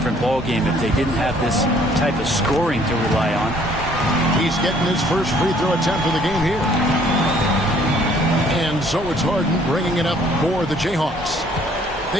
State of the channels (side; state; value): both; normal; correlation 0.60